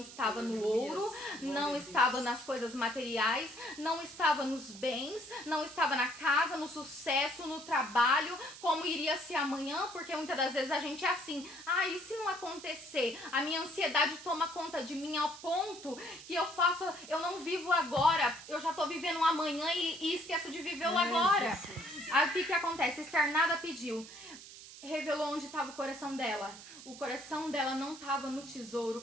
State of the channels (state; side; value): noise; right; hiss, 15 dB below the sound